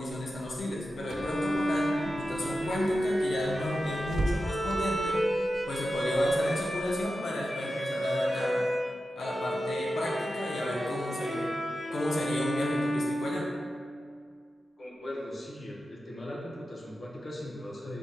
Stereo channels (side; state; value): both; normal; correlation 0.92